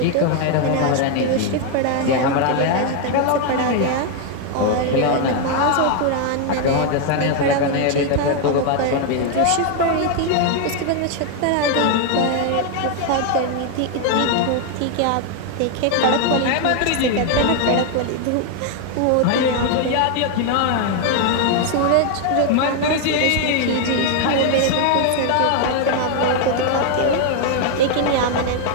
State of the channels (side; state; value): both; different; correlation 0.01